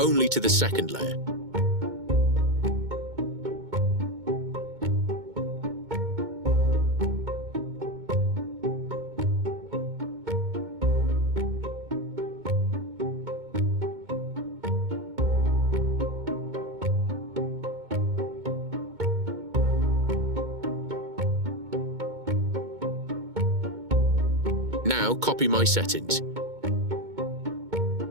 to the second layer. Now copy my settings.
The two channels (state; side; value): late; left; 2.2 ms